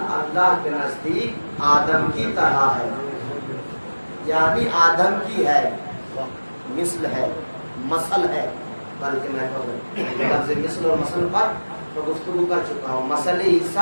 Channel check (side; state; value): both; inverted; correlation -1.00